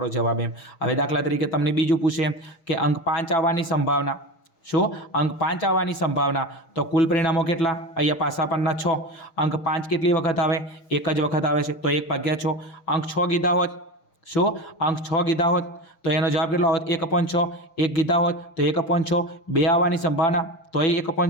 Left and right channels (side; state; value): right; late; 6.3 ms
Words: जवाब एम। हवे दाखला तरीके तमने बीजुं पूछे के अंक 5 आववानी संभावना। शो अंक 5 आववानी संभावना। तो कुल परिणामों केटला? अहींया पासा परना 6। अंक 5 केटली वखत आवे? 1 ज वखत आवे छे। तो 1/6। अंक 6 कीधा होत शो अंक 6 कीधा होत तो एनो जवाब केटलो आवत? 1/6। 1 कीधा होत तो 1/6। 2 आववानी संभावना तो